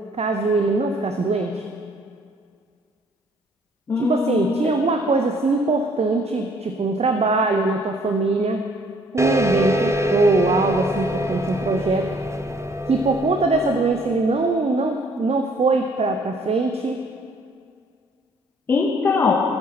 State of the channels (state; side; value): normal; both; correlation 0.60